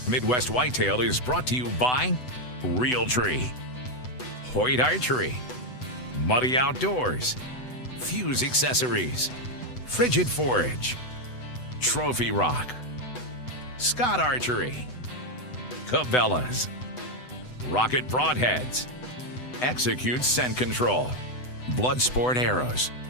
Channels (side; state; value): right; late; 8.0 ms